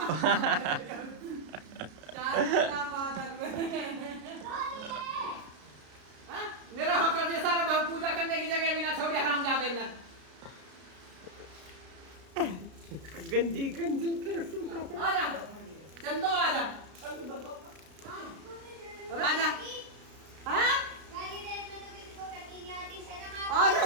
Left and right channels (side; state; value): left; late; 33 ms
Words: मेरा होकर दिया सारा भाव पूजा करने की जगह भी ना छोड़ी। हरामजादे ने गंजी गंजी आजा चंदो आजा आजा। हाँ आ